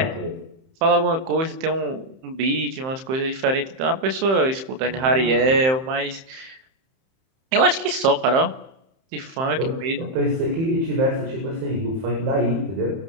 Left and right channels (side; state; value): left; late; 31 ms